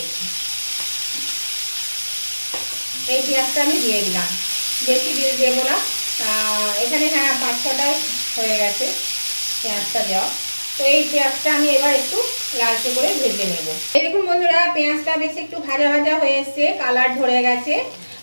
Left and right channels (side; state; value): both; inverted; correlation -1.00